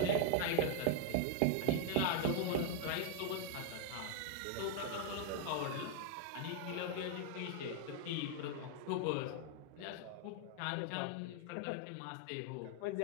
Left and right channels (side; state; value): both; different; correlation 0.01